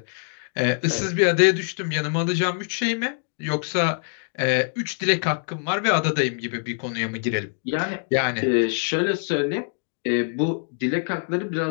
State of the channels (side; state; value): right; silent; 62 dB below the other